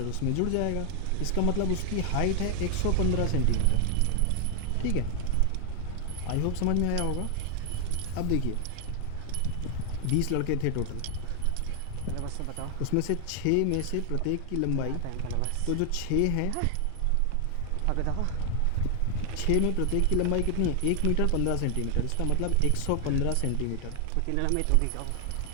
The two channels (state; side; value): different; both; correlation 0.00